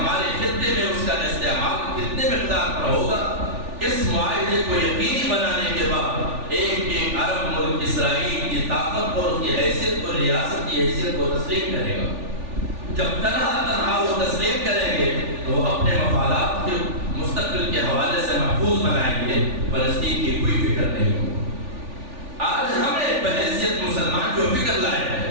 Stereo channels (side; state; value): left; late; 3.4 ms